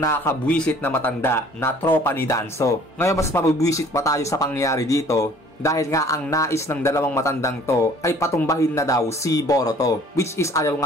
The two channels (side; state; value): both; normal; correlation 0.54